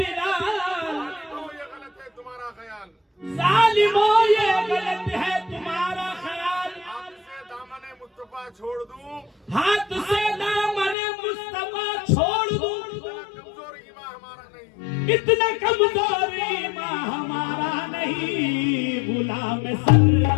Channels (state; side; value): drops out; right; at 11.0 s